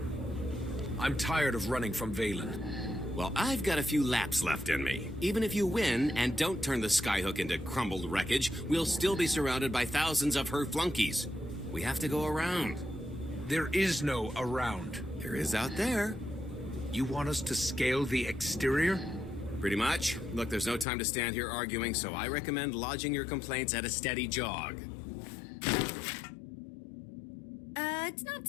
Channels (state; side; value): drops out; right; at 20.9 s